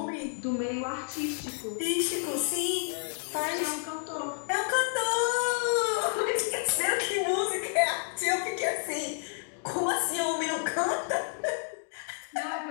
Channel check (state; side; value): silent; right; digital silence